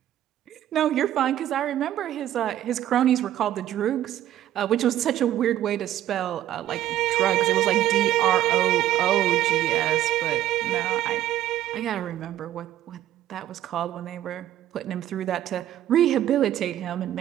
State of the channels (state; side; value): quieter; left; 12.5 dB